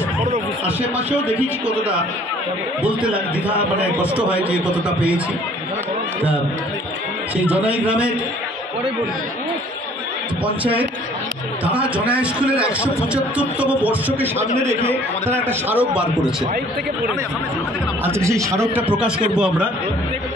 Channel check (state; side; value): normal; both; correlation 0.55